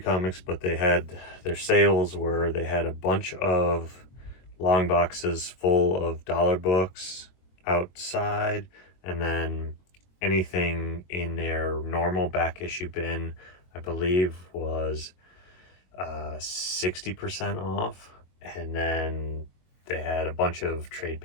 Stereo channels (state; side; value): late; right; 22 ms